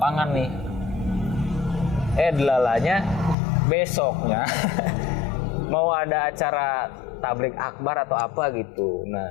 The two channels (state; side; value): drops out; right; at 3.4 s